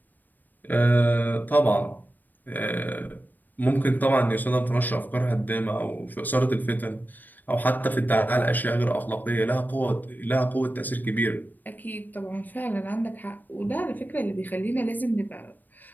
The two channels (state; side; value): late; right; 0.088 ms